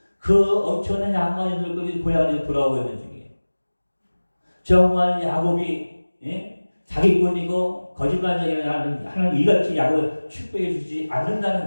그 엄청난 양반인들까지 고향에 돌아오고 있는 중이에요. 정말 야곱이 사기꾼이고 거짓말쟁이를 하나님 이같이 야곱을 축복해 주지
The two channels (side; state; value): both; inverted; correlation -1.00